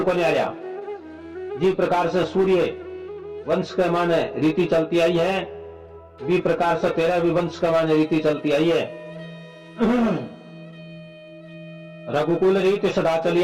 को नहीं आया। जिस प्रकार से सूर्य वंश के माने रीति चलती आई है, भी प्रकार से तेरा भी वंश के माने रीति चलती आई है। रघुकुल रीति सदा चली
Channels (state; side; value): identical; both; correlation 1.00